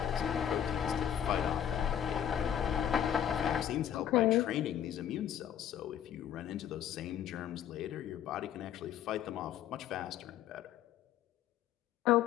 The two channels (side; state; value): right; quieter; 10.0 dB